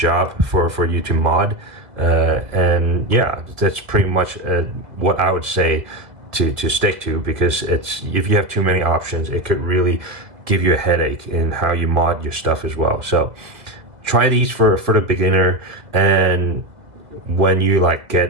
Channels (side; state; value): left; late; 1.7 ms